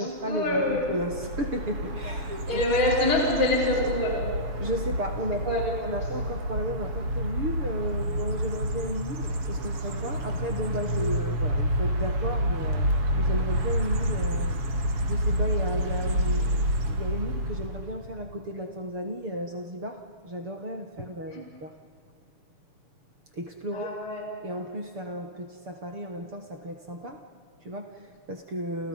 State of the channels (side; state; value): left; late; 7.1 ms